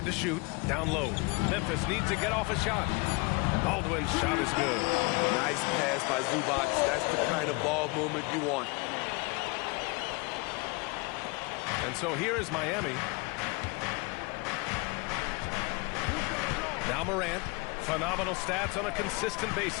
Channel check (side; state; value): right; quieter; 28.2 dB